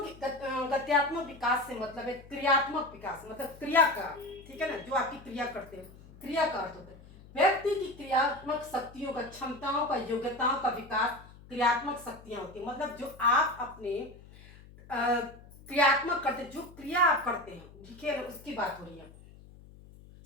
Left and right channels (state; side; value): noise; left; hum, 21 dB below the sound